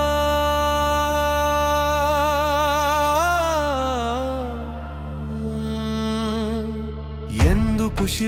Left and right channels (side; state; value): both; identical; correlation 1.00